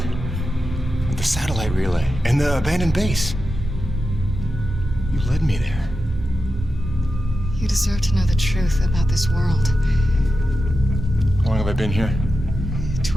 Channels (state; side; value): normal; both; correlation 0.90